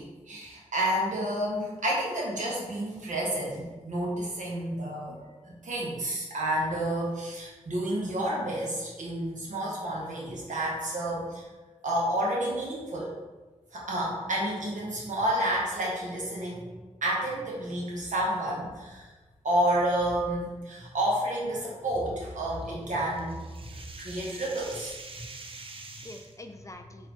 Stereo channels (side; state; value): both; normal; correlation 0.43